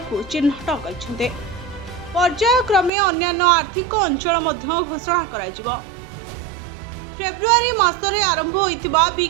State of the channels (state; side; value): drops out; left; at 2.9 s